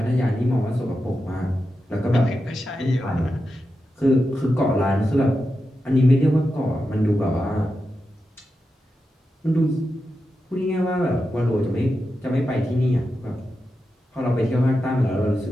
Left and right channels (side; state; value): both; normal; correlation 0.89